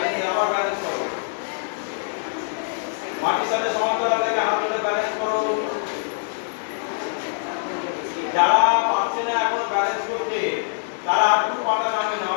আবার ব্যালেন্স করো। মাটির সাথে সমান্তরাল রেখে হাঁটুতে ব্যালেন্স করো। যারা পারছে না এখন ব্যালেন্স করতে, তারা হাঁটু পাটা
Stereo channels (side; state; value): right; silent; digital silence